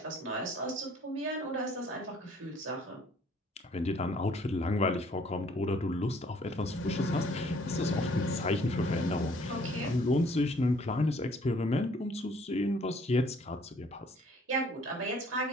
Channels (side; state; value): both; normal; correlation 0.59